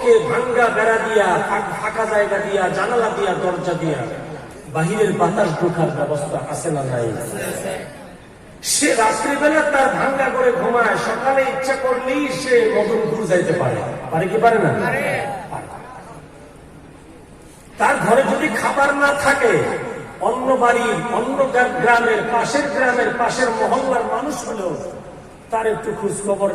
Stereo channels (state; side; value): identical; both; correlation 1.00